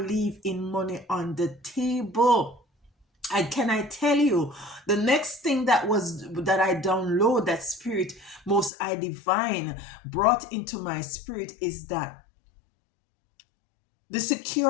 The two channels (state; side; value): drops out; right; at 8.7 s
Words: money on the table. And can I tell you, the next thing that I download, that spirit most I divine brought into my spirit, is that the